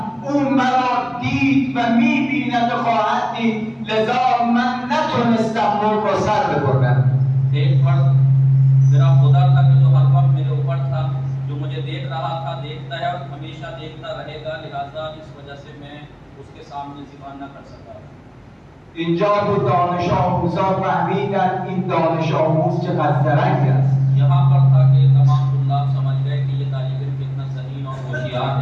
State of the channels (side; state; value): both; identical; correlation 1.00